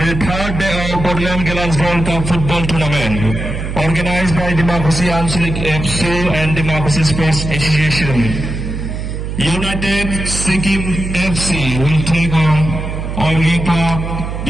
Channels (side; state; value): right; noise; hum, 5 dB below the sound